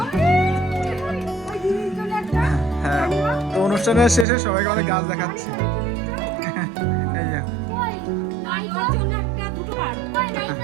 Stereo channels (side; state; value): left; drops out; at 4.2 s